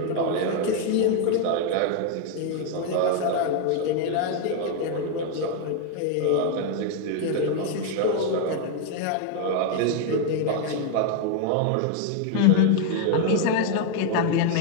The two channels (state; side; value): different; both; correlation 0.00